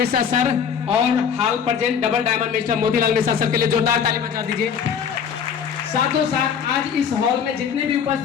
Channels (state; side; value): quieter; right; 7.3 dB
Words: sir और हाल present double diamond mister Motilal Mishra sir के लिए जोरदार ताली बजा दीजिए। साथों साथ आज इस हॉल में जितने भी